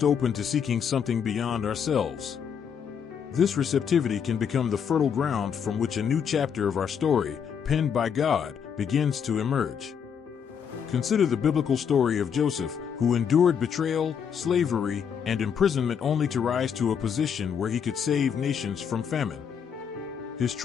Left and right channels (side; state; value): right; quieter; 7.4 dB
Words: open to seeking something beyond ourselves. This receptivity can become the fertile ground from which a new chapter of our story, penned by God, begins to emerge. Consider the biblical story of Joseph, who endured betrayal, slavery, and imprisonment only to rise to a position where he could save nations from famine. His